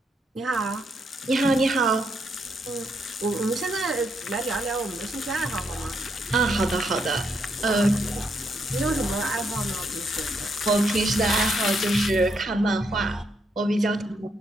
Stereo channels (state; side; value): normal; both; correlation 0.77